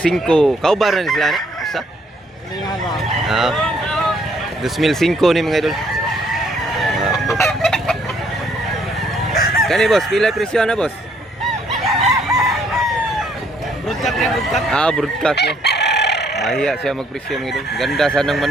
Kaubar na sila na? Isa? 2,500 ni mga idol. Kani boss, pila presyo na boss? Broadcast yan, broadcast. Broadcast niya. Mahiya siya magpresyo mga idol. Ganda sanang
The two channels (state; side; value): normal; both; correlation 0.67